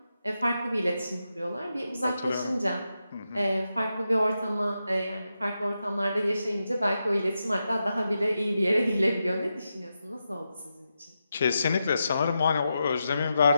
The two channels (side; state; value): both; inverted; correlation -0.88